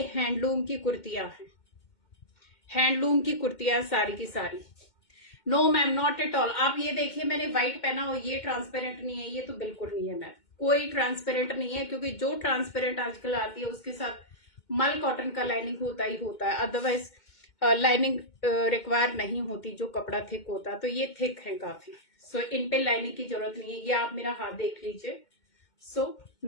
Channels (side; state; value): right; late; 2.2 ms